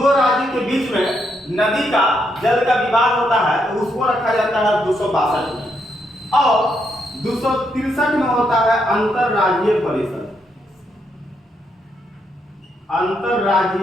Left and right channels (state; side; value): normal; both; correlation 0.78